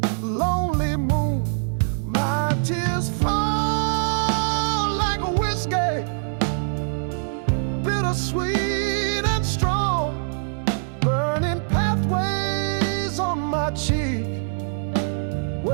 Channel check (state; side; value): silent; left; digital silence